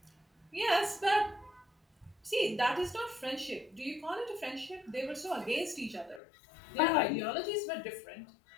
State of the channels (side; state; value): right; drops out; at 6.2 s